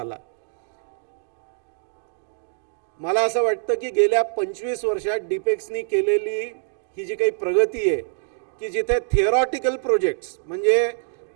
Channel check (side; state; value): left; silent; digital silence